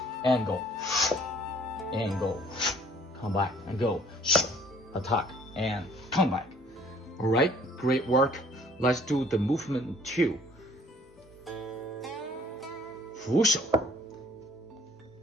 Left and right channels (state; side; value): normal; both; correlation 0.56